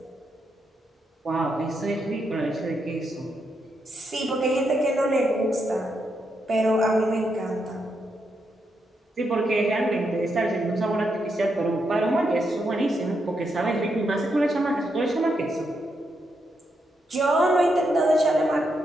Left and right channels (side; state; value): both; normal; correlation 0.81